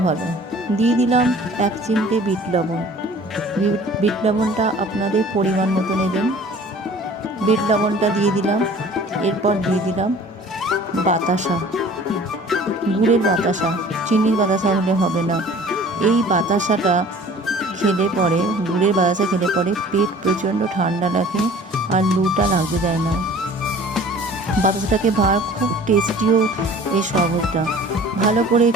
ভালো। দিয়ে দিলাম 1 চিমটে বিট লবণ। বিট লবণটা আপনাদের পরিমাণ মতো নেবেন। বিট লবণটা দিয়ে দিলাম। এরপর দিয়ে দিলাম বাতাসা, গুড়ের বাতাসা, চিনির বাতাসা হলে হবে না। এই বাতাসাটা খেলে পরে, গুড়ের বাতাসা খেলে পরে পেট প্রচণ্ড ঠান্ডা লাগে আর লুটা লাগতে দেয় না। বাতাসাটাকে খুব টেস্টিও এই শরবতটা। ভালো করে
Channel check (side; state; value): both; normal; correlation 0.48